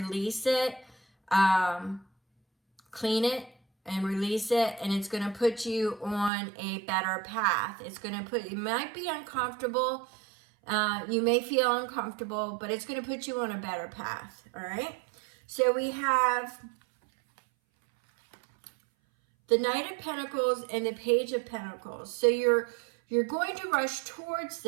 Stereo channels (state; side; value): drops out; left; at 6.3 s